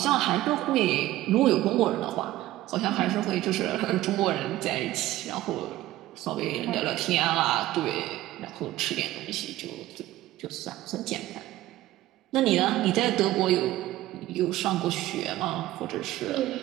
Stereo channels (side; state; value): left; quieter; 15.6 dB